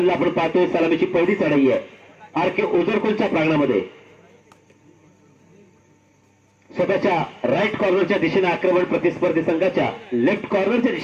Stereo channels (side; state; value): both; identical; correlation 1.00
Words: आपण पाहतोय. सलामीची पहिली चढाई आहे आरके ओझरखोलच्या प्रांगणामध्ये. स्वतःच्या राईट कॉर्नरच्या दिशेने आक्रमण, प्रतिस्पर्धी संघाच्या लेफ्ट कॉर्नरच्या